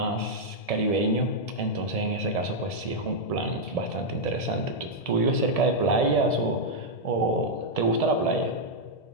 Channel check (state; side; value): late; right; 1.7 ms